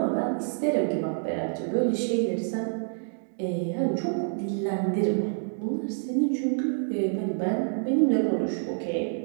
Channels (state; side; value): silent; left; digital silence